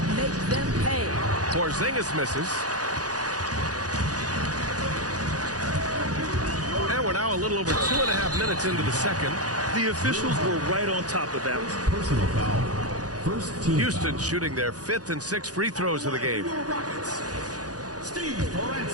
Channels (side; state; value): left; late; 0.68 ms